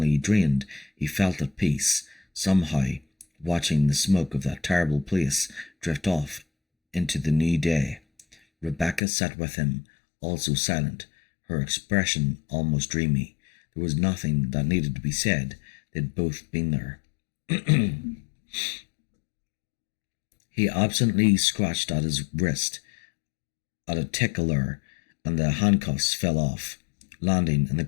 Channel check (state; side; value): drops out; right; at 9.0 s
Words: drained, he felt at peace, somehow, watching the smoke of that terrible place drift off into the new day. Rebecca sat with him, also silent, her expression almost dreamy. There was nothing that needed to be said. They'd both been there. He absently scratched at his wrist at a tickler, and the handcuffs fell off, landing in the